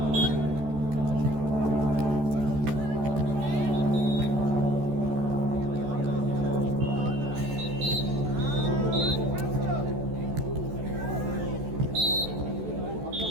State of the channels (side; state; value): left; late; 14 ms